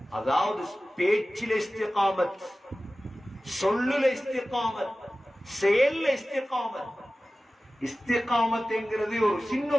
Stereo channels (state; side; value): normal; both; correlation 0.96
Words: அதாவது பேச்சில இஸ்திகாமத், சொல்லுல இஸ்திகாமத், செயல்ல இஸ்திகாமத். இஸ்திகாமத் என்கிறது ஒரு சின்ன